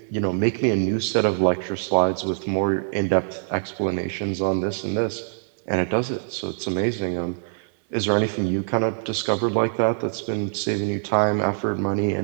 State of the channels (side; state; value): left; silent; 63 dB below the other